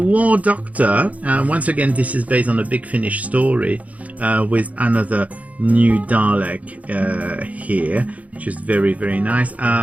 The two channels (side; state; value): left; late; 0.069 ms